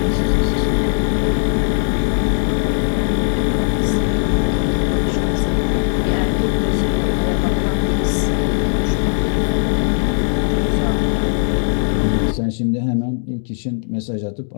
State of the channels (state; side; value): silent; right; digital silence